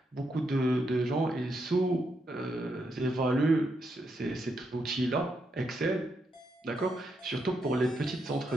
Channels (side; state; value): both; normal; correlation 0.80